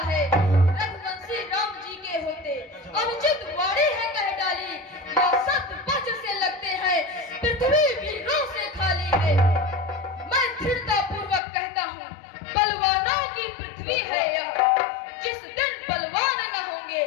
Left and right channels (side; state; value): right; drops out; at 11.4 s